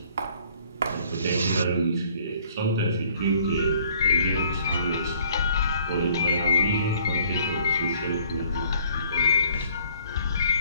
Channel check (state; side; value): inverted; both; correlation -0.60